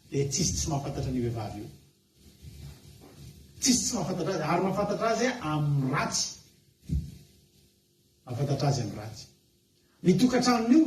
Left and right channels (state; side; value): identical; both; correlation 1.00